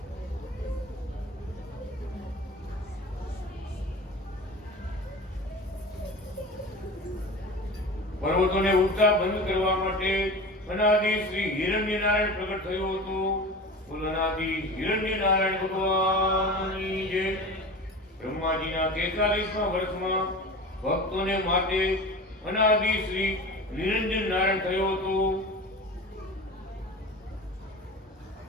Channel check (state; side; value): normal; both; correlation 0.33